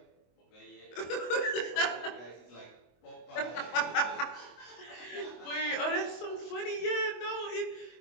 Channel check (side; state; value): right; late; 24 ms